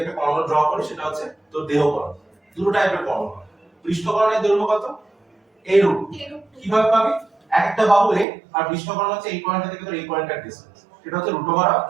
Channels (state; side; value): drops out; left; at 8.2 s